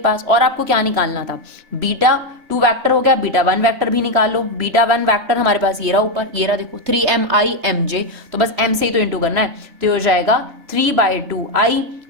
और आपको क्या निकालना था, बीटा 2 वेक्टर हो गया, बीटा 1 वेक्टर भी निकाल लो। बीटा 1 वेक्टर हमारे पास ये रहा ऊपर, ये रहा देखो 3mimj, तो बस m से ही तो इंटू करना है, तो हो जाएगा 3/2i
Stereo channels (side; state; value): left; late; 3.0 ms